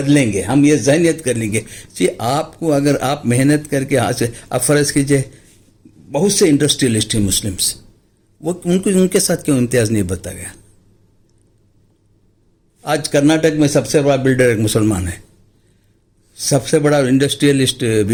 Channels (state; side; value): identical; both; correlation 1.00